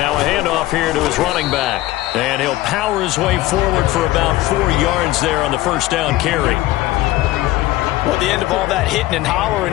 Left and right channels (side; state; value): right; quieter; 16.8 dB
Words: a handoff here to his running back. And he'll power his way forward for about 4 yards there on the first down carry. Well, at the end of all that hitting and